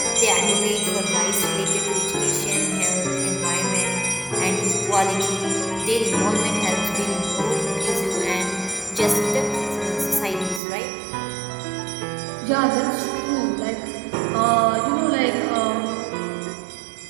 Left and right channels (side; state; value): left; drops out; at 10.6 s